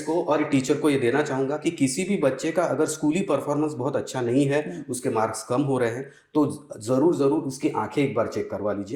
को और टीचर को ये देना चाहूँगा कि किसी भी बच्चे का अगर स्कूली परफॉर्मेंस बहुत अच्छा नहीं है, उसके मार्क्स कम हो रहे हैं, तो ज़रूर उसकी आंखें एक बार चेक करवा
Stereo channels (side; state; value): both; identical; correlation 1.00